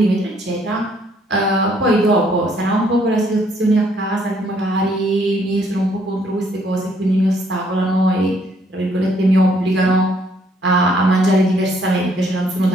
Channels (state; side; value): normal; both; correlation 0.67